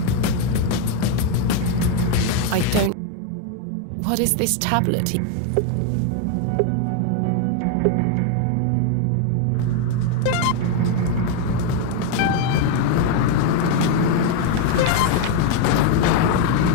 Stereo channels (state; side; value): different; both; correlation 0.01